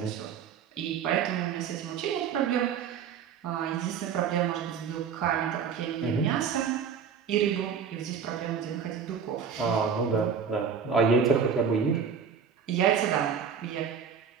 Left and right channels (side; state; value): left; quieter; 6.9 dB